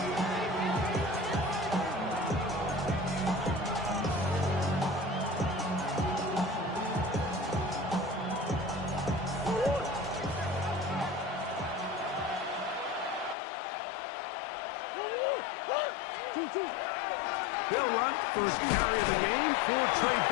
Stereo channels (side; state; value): right; drops out; at 13.4 s